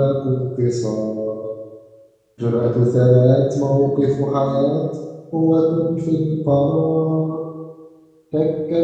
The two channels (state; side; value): identical; both; correlation 1.00